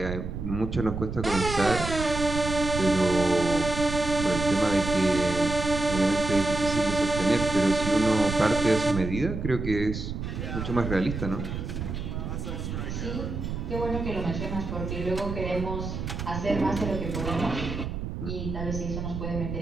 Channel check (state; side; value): noise; right; rumble, 5 dB below the sound